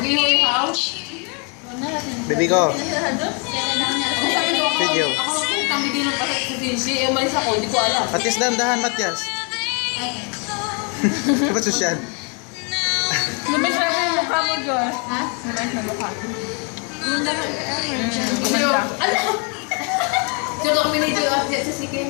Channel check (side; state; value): right; quieter; 35.9 dB